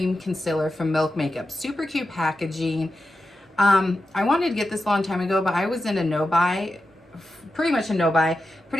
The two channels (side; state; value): both; normal; correlation 0.90